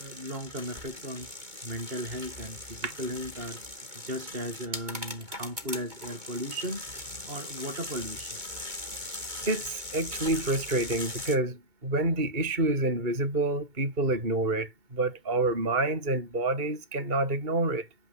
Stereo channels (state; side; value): late; left; 2.2 ms